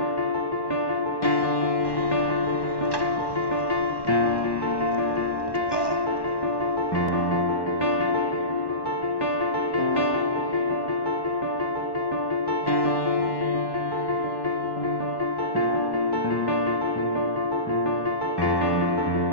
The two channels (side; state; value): right; late; 1.1 ms